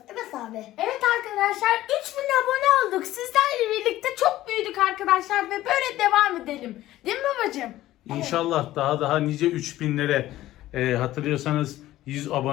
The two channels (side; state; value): right; quieter; 15.1 dB